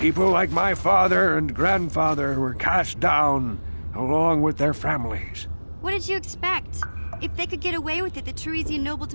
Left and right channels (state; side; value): inverted; both; correlation -1.00